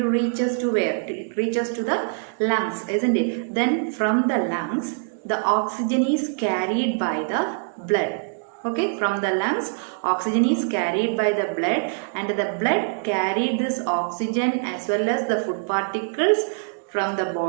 reaches to where? It reaches to the lungs, isn't it? Then from the lungs, the oxygen is carried by the blood. Okay, from the lungs, oxygen is carried by the blood, and the blood carried this oxygen as well as the food particles from the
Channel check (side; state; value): left; silent; digital silence